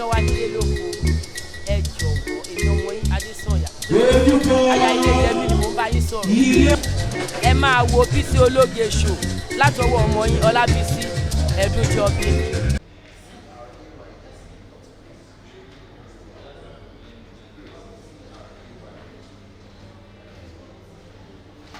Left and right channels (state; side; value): identical; both; correlation 1.00